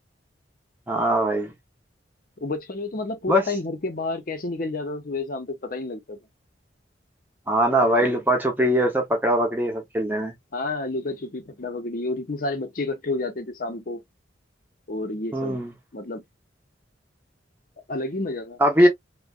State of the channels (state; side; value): normal; both; correlation 0.50